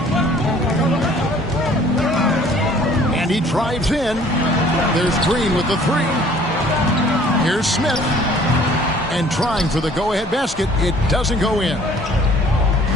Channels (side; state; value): both; normal; correlation 0.55